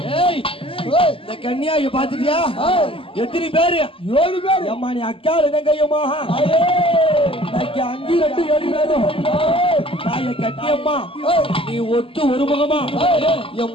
கன்னியாய பாத்துட்டியா எத்தனை பேரு 7 பேர் அம்மா நீ அக்கால தங்கையம்மா 5 2 7 பேரும் தாய கட்டியம்மா நீ ஒத்து ஒரு முகமா என்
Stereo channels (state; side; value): late; right; 0.26 ms